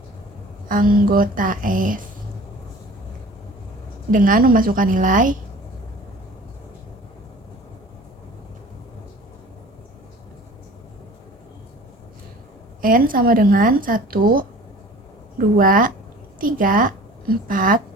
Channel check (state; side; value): normal; both; correlation 0.44